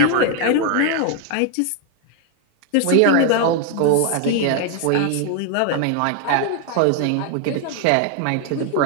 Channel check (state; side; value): different; both; correlation 0.00